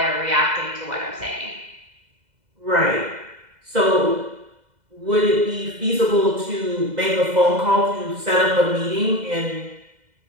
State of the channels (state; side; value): late; left; 2.0 ms